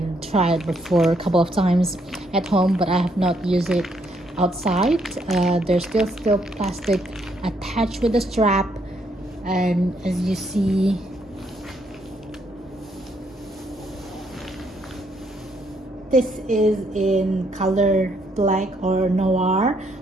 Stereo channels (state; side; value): normal; both; correlation 0.72